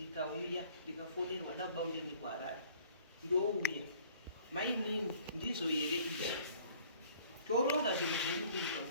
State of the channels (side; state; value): both; inverted; correlation -0.54